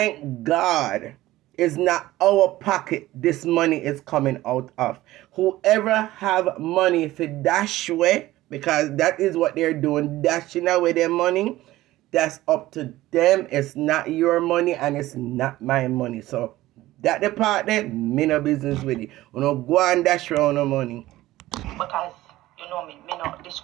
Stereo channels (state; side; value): quieter; left; 16.5 dB